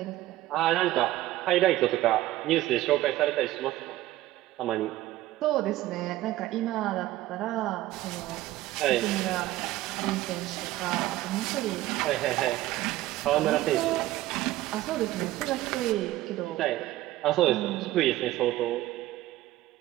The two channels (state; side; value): quieter; left; 15.9 dB